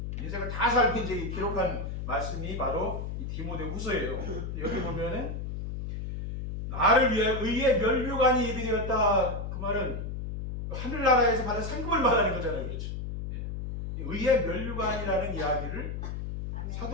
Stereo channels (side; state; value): left; noise; hum, 5 dB below the sound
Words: 인생을 다 살고 이제 기록한 말씀이 바로 이 디모데후서예요. 여기 보면은 나를 위해 의의 면류관이 예비되었다. 그 말은 하늘나라에서 받은 상급을 말하는 거잖아요. 그렇죠? 예. 의의 면류관이라는 이야기를